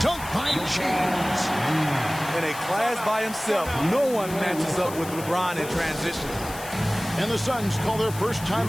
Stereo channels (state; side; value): noise; left; hiss, 13 dB below the sound